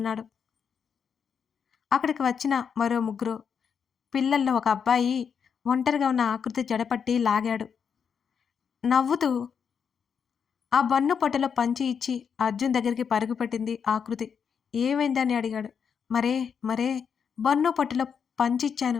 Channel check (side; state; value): right; quieter; 6.9 dB